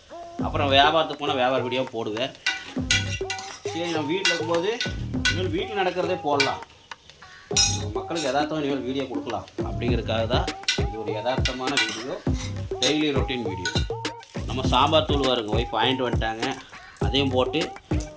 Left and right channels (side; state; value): both; identical; correlation 1.00